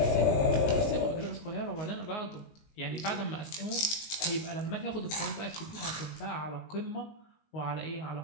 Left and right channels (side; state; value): right; late; 19 ms